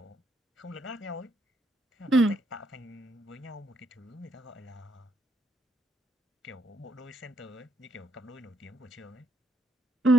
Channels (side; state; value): both; normal; correlation 0.74